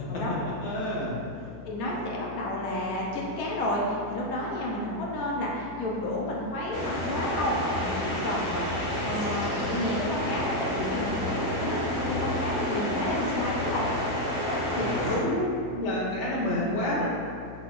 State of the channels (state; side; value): noise; left; hum, 13 dB below the sound